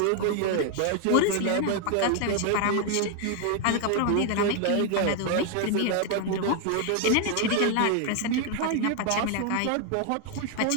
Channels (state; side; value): different; both; correlation 0.00